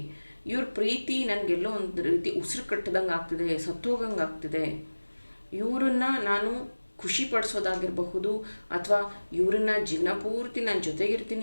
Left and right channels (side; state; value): both; inverted; correlation -1.00